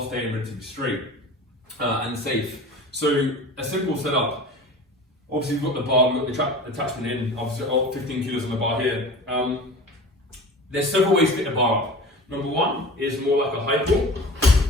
relatively straight and safe. So a simple setup. Obviously we've got the bar, we've got the attachment in, obviously 15 kilos on the bar here. There's several ways to get the bar up. Number one is more like a high pull,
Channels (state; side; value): normal; both; correlation 0.37